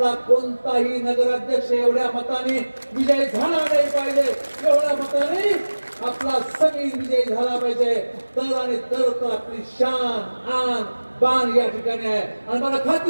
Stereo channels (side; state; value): both; inverted; correlation -1.00